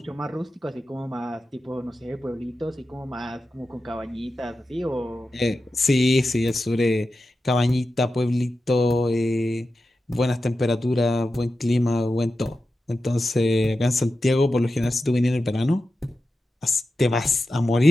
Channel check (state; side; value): normal; both; correlation 0.92